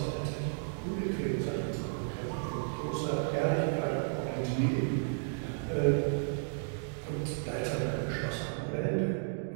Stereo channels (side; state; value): left; silent; digital silence